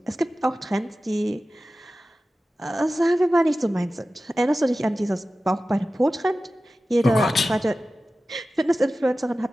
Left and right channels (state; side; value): normal; both; correlation 0.95